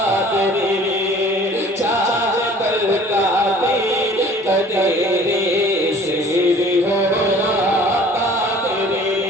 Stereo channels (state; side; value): normal; both; correlation 0.50